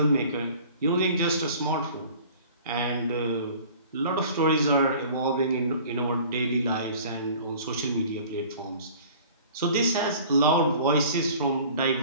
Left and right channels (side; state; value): both; inverted; correlation -0.47